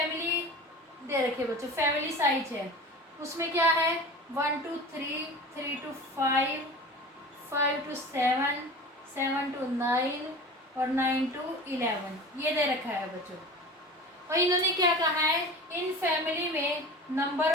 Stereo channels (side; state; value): both; normal; correlation 0.35